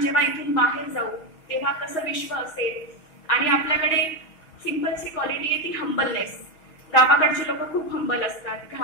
जेव्हा इथून बाहेर जाऊ तेव्हा कसं विश्व असेल. आणि आपल्याकडे सिंपलची क्वालिटी आहे ती हंबलनेस. गावाकडचे लोक खूप हंबल असतात,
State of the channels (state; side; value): late; right; 6.3 ms